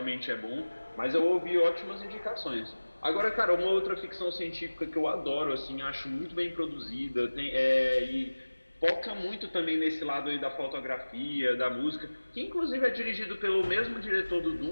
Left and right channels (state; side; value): inverted; both; correlation -1.00